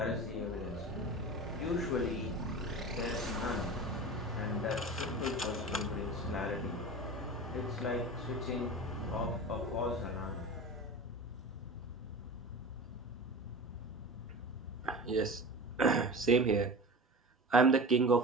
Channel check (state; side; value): normal; both; correlation 0.32